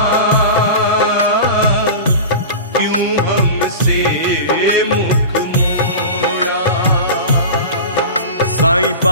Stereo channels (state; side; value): inverted; both; correlation -0.30